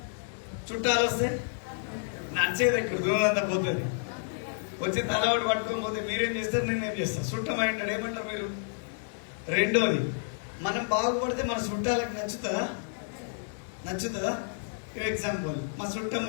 చుట్టాలు వస్తే నడిచేది ఇక్కడ దూరంతా పోతుంది. వచ్చి తలవాడు పట్టుకొని పోతే మీరేం చేస్తారు, నేనేం చేస్తాను? చుట్టం అంటాడు, ఏమంటారు మీరు? రెండోది, మనం బాగుపడితే మన చుట్టాలకు నచ్చుతుందా? ఎగ్జాంపుల్, మా చుట్టం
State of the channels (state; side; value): silent; right; digital silence